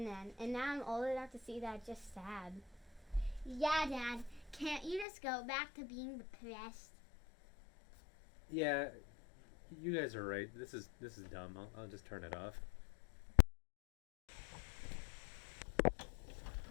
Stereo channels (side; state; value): right; drops out; at 5.1 s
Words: then, and now I'm old enough to see that. Just sad. Yeah, Dad. Can't you just go back to being depressed? Yeah, you guys are right. This is dumb. I'll just turn it off.